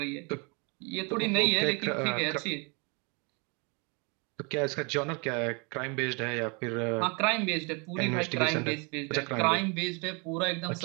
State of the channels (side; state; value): left; quieter; 32.1 dB